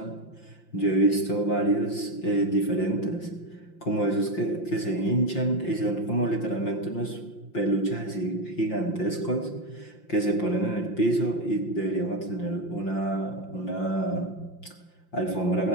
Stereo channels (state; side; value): late; right; 5.7 ms